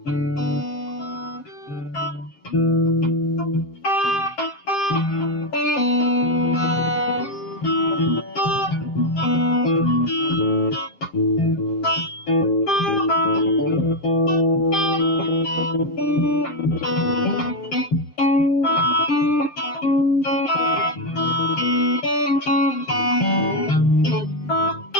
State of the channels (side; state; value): right; late; 6.6 ms